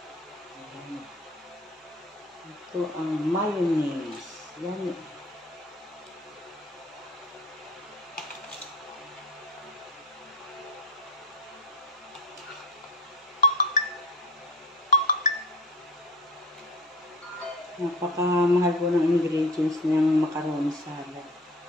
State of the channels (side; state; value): both; normal; correlation 0.39